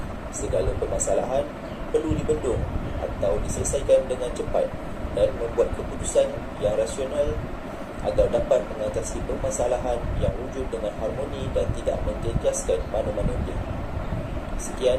Segala permasalahan perlu dibendung atau diselesaikan dengan cepat dan membuat keputusan yang rasional agar dapat mengatasi permasalahan yang wujud dengan harmoni dan tidak menjejaskan mana-mana pihak.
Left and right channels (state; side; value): identical; both; correlation 1.00